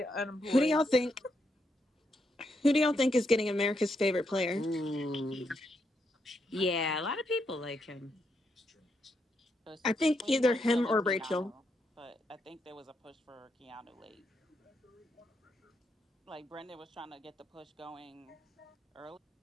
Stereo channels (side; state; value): both; normal; correlation 0.80